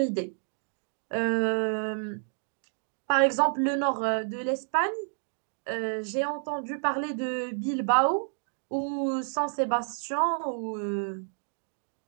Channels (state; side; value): silent; left; digital silence